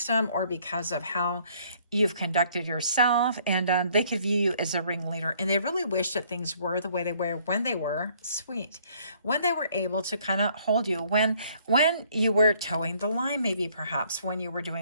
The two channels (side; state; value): both; inverted; correlation -0.62